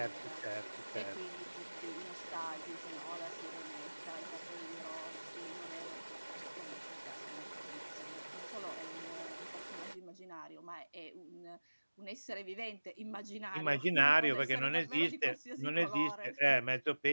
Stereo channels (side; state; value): both; inverted; correlation -1.00